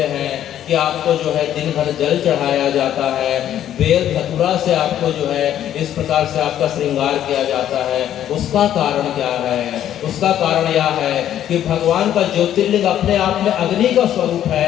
हैं कि आपको जो है दिन भर जल चढ़ाया जाता है, बेल धतूरा से आपको जो है इस प्रकार से आपका श्रृंगार किया जाता है। उसका कारण क्या है? उसका कारण यह है कि भगवान का ज्योतिर्लिंग अपने आप में अग्नि का स्वरूप है,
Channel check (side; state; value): right; quieter; 11.1 dB